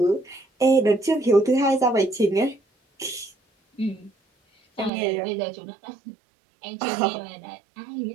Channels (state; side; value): drops out; left; at 4.9 s